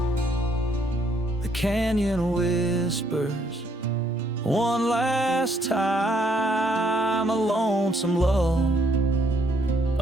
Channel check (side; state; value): both; normal; correlation 0.69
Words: The canyon whispers one last time, a lonesome love